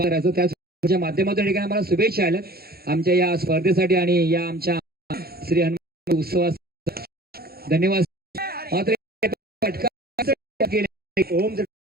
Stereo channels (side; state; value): left; late; 0.45 ms